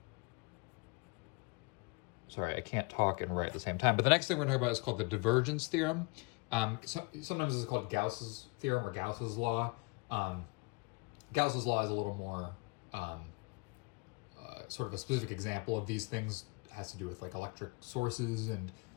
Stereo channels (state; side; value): quieter; right; 30.0 dB